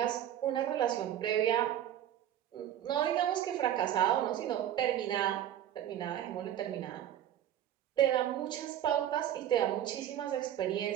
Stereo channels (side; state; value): left; quieter; 11.1 dB